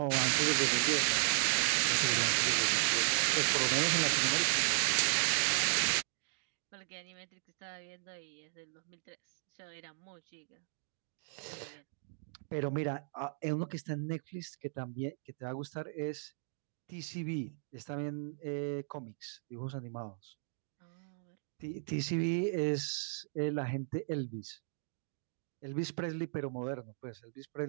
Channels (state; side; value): silent; left; digital silence